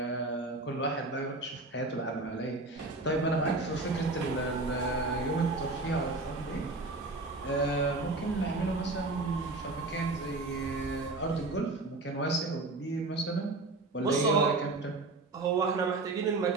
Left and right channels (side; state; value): left; quieter; 3.2 dB